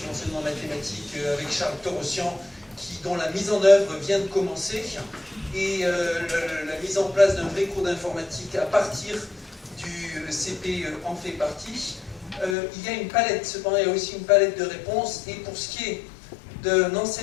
l'enseignement mathématique avec Charles Torossian, dont la mise en œuvre vient de commencer, et la mise en place d'un vrai cours d'informatique à partir du CP en fait partie. Il y a une palette, cependant il y a aussi une palette de réponses, et pour ce qui est d'un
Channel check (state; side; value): drops out; right; at 12.6 s